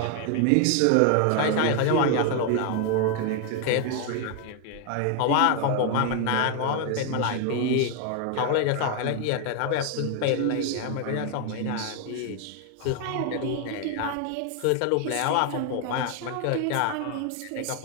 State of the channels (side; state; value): both; different; correlation 0.01